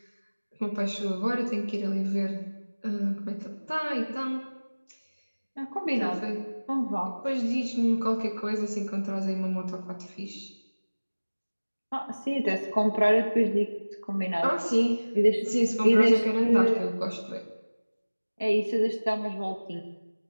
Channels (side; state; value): both; inverted; correlation -1.00